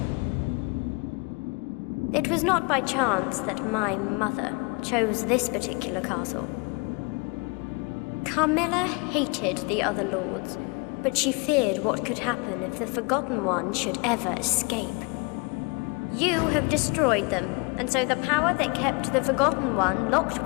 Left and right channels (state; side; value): quieter; right; 30.3 dB